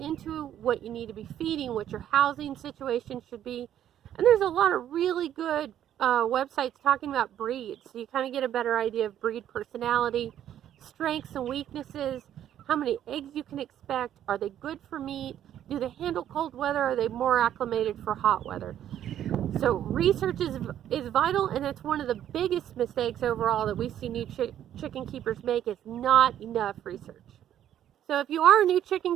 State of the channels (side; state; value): left; quieter; 10.9 dB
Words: into, what you need to be feeding, what your housing situation should be. And there's a lot of really good websites talking about breeds, so you kind of get a better idea of breed personality, strengths and weaknesses, how many eggs you can expect, are they good for meat, do they handle cold weather, are they more acclimated for hot weather. So research is vital, and it's one of the biggest mistakes overall that we see new chicken keepers make, is not enough research. So if you are a new